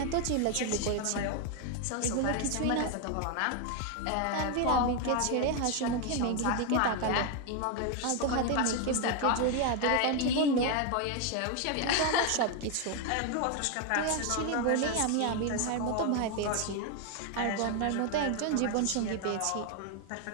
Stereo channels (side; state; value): both; different; correlation 0.01